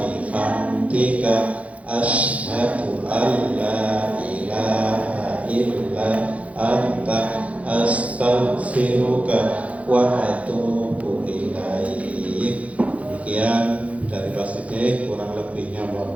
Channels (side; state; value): left; late; 0.066 ms